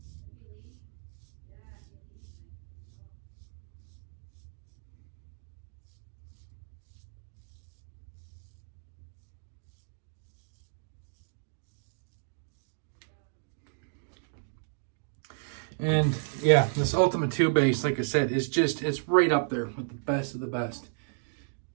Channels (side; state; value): left; silent; digital silence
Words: And yeah, this Ultima 2 base, like I said, it's right up there with the best of the best.